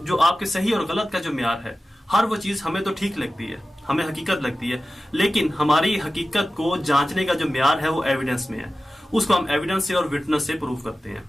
जो आपके सही और गलत का जो म्यार है, हर वो चीज हमें तो ठीक लगती है, हमें हकीकत लगती है, लेकिन हमारी हकीकत को जांचने का जो म्यार है वो एविडेंस में है। उसको हम एविडेंस से और विटनेस से प्रूव करते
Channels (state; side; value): normal; both; correlation 0.95